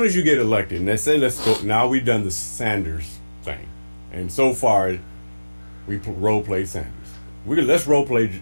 as you get elected, and they say, let's go, now we've done the Sanders thing. And so far, we role play Sanders. Let's role play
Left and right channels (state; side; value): inverted; both; correlation -1.00